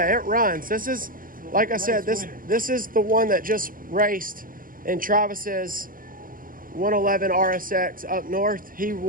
it runs. This is, like I said, this is the one that just raced in Travis's 111 RSX up north. He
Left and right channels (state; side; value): late; left; 0.40 ms